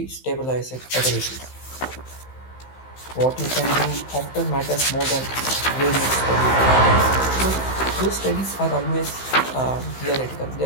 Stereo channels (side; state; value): right; late; 15 ms